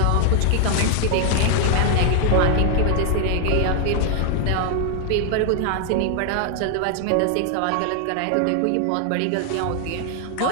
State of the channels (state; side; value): different; both; correlation 0.00